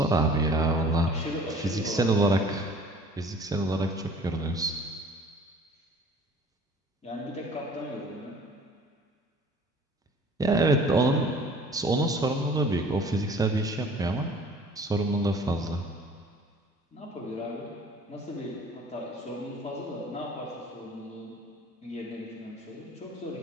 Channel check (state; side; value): normal; both; correlation 0.50